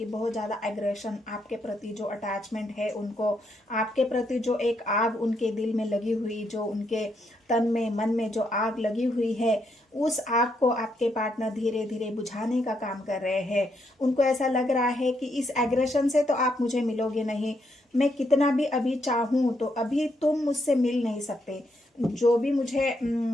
बहुत ज़्यादा एग्रेशन आपके प्रति, जो अटैचमेंट है उनको आपके प्रति, जो एक आग उनके दिल में लगी हुई, जो उनके तन में मन में जो आग लगी हुई है, उस आग को आपके पार्टनर धीरे धीरे बुझाने का काम कर रहे हैं। उनको ऐसा लग रहा है कि इस एग्रेशन से तो आप मुझे मिलोगे नहीं, मैं कितना भी अभी चाहूँ तो अभी तुम मुझसे मिल नहीं सकते। जो भी मुझे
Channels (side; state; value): both; normal; correlation 0.77